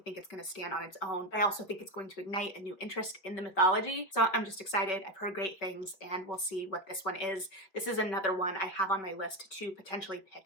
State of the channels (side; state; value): right; late; 5.2 ms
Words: it's going to stand on its own. I also think it's going to ignite a new interest in the mythology. So I'm just excited. I've heard great things, and we'll see what this one is. This is another one I have on my list to potentially